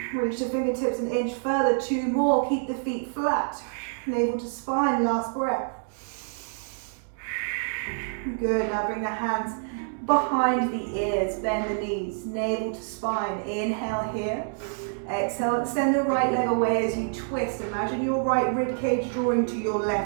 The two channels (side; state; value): left; silent; digital silence